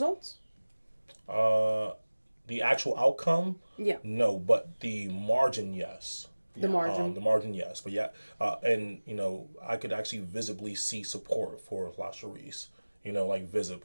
The actual outcome, Yeah. no, but the margin, yes. The margin. The margin, yes. But yeah, and I could actually visibly see support for LaSharice.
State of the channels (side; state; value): both; inverted; correlation -1.00